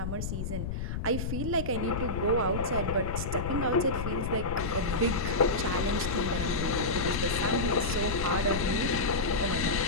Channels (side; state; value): left; noise; rumble, 3 dB below the sound